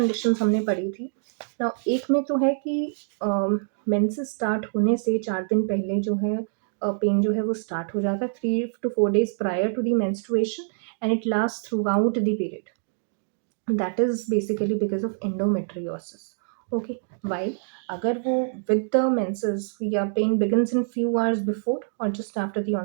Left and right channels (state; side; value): silent; left; digital silence